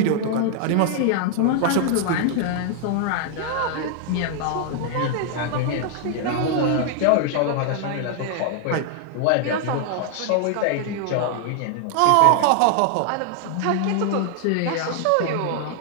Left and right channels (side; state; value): both; different; correlation 0.00